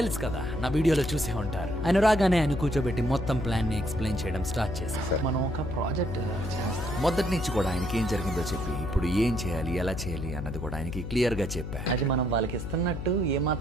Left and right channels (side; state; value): left; noise; hum, 6 dB below the sound